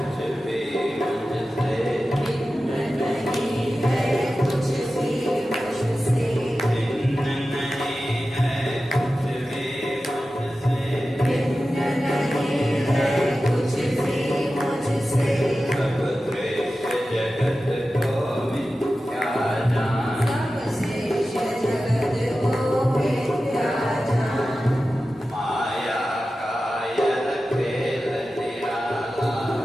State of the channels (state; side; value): normal; both; correlation 0.94